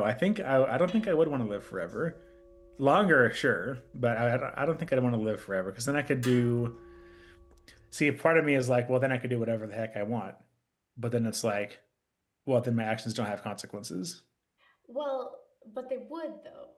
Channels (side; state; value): both; identical; correlation 1.00